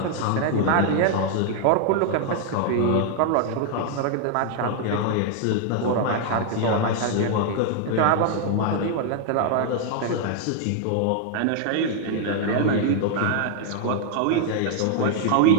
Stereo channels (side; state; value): both; different; correlation 0.00